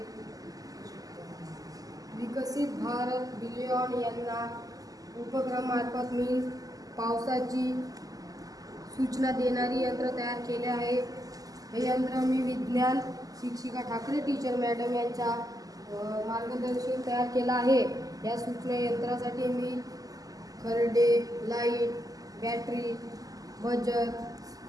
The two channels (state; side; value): late; left; 0.17 ms